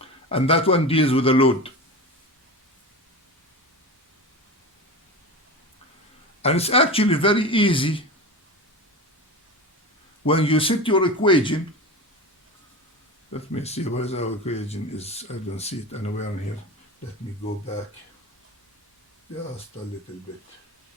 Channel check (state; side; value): normal; both; correlation 0.27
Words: and that one deals with the load. And it's actually very easy when you set your equation. Let me see where our equation is. I don't see it anywhere in here. Let me go back just a little bit.